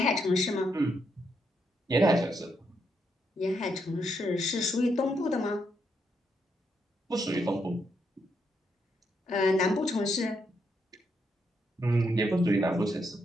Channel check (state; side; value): normal; both; correlation 0.78